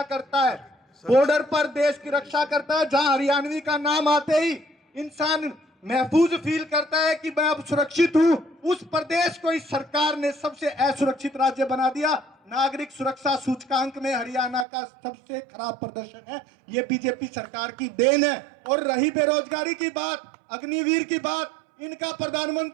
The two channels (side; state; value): left; drops out; at 14.7 s